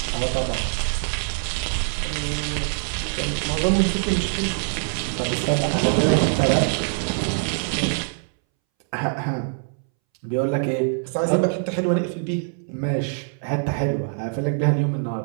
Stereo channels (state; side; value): silent; left; 62 dB below the other